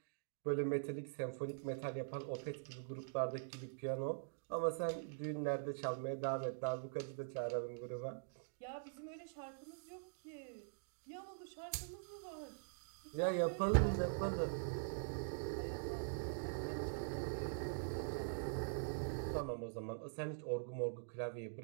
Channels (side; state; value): left; silent; digital silence